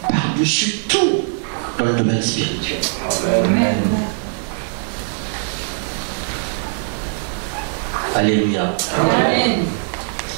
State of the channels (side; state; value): left; silent; 66 dB below the other